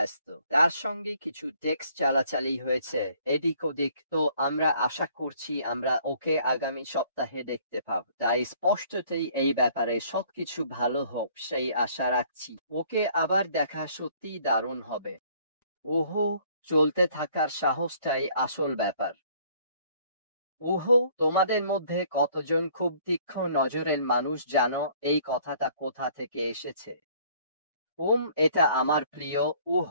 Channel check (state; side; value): inverted; both; correlation -0.59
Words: তার সঙ্গে কিছু টেক্সট চালাচালি হয়েছে এদিক ওদিক। তো আমরা আশা করছি আমরা ওকে আগামী সপ্তাহে দেখতে পাব। তাই স্পষ্টতই এই ব্যাপারে সবকিছু ভালো হোক সেই আশা রাখছি। ওকে আবার দেখা সত্যিই দারুণ হবে। ওহো, চলতে থাকার সাহসটাই আসল ব্যাপার। ওহো, তোমাদের মধ্যে কতজন খুব তীক্ষ্ণ নজরের মানুষ জানো এই কথাটা কোথা থেকে এসেছে? এটা আমার প্রিয়